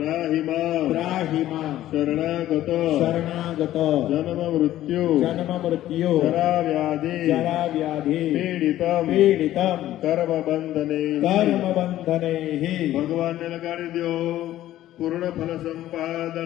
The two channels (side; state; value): right; quieter; 13.7 dB